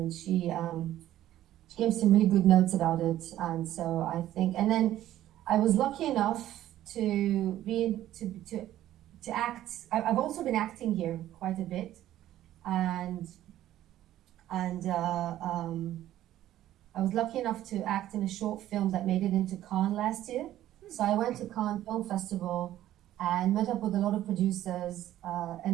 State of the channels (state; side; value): quieter; left; 13.2 dB